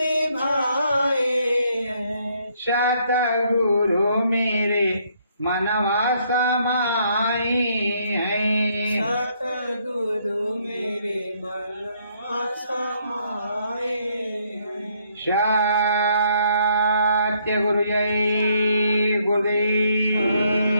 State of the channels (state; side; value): inverted; both; correlation -0.69